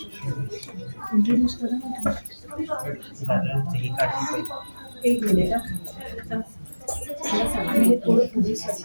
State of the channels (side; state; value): both; inverted; correlation -1.00